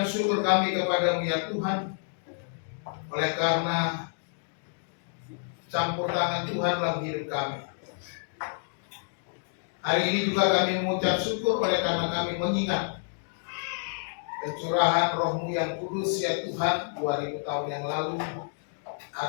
syukur kami kepada-Mu ya Tuhan, oleh karena campur tangan Tuhan dalam hidup kami. Hari ini juga kami mengucap syukur oleh karena kami mengingat pencurahan Roh-Mu yang kudus ya Tuhan 2000 tahun yang lalu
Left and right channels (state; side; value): silent; right; digital silence